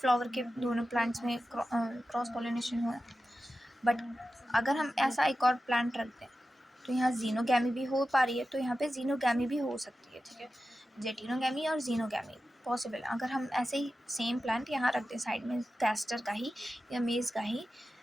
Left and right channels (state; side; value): normal; both; correlation 0.93